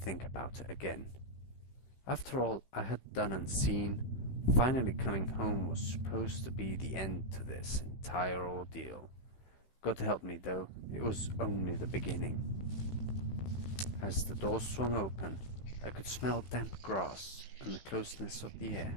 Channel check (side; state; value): right; late; 15 ms